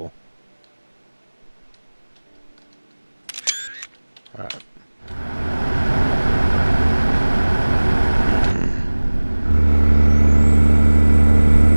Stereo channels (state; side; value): inverted; both; correlation -1.00